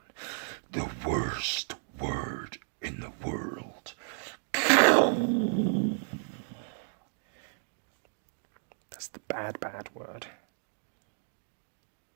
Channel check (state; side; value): silent; left; digital silence